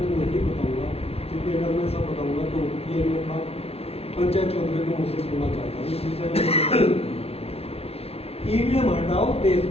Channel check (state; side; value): late; right; 0.29 ms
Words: नहीं बताऊंगा, क्योंकि अगर मैं सब बताऊंगा तो ये मैं था पंचायत चौधरी को मुझसे सुनना चाहता हूँ। इस विषय में EVM हटाओ, देश